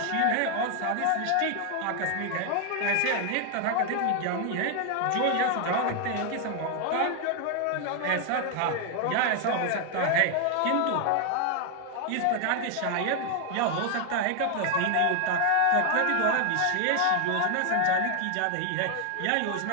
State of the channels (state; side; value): different; both; correlation 0.00